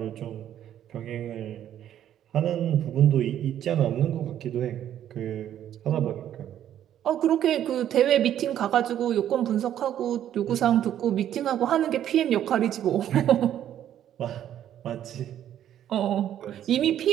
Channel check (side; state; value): left; quieter; 10.9 dB